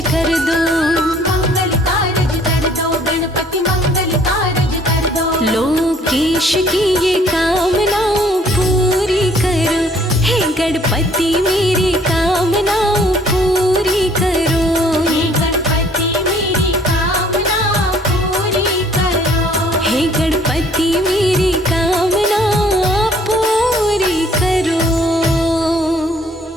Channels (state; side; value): normal; both; correlation 0.59